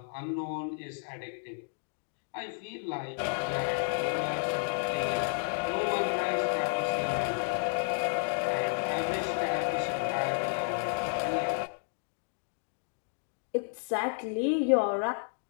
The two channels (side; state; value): right; silent; digital silence